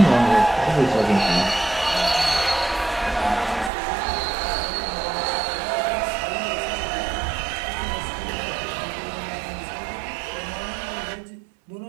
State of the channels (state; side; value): drops out; left; at 3.7 s